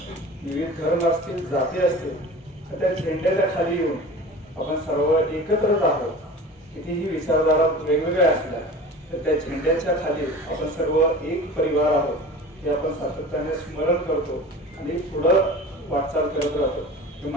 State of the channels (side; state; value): both; normal; correlation 0.37